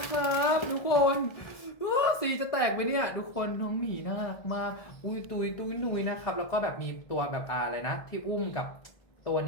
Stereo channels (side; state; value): right; late; 1.6 ms